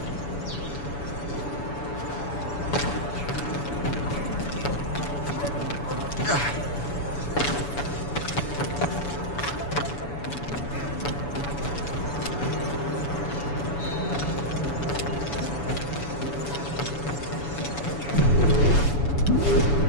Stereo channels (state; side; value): late; right; 7.0 ms